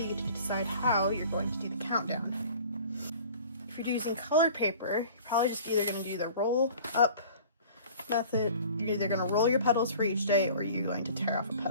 get to decide how you're going to do the countdown. If you're using colored paper, you're probably just either going to do the roll up method. You're either going to roll your petals for each day or you're going to tear off a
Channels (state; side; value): inverted; both; correlation -0.46